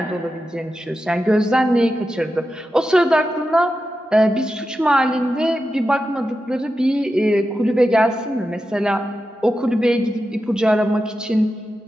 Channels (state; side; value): normal; both; correlation 0.90